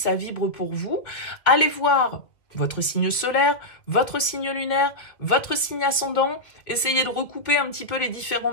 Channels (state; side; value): late; right; 2.0 ms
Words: vibre pour vous. Allez voir votre signe solaire, votre signe lunaire, votre signe ascendant. Essayez de recouper un petit peu les différents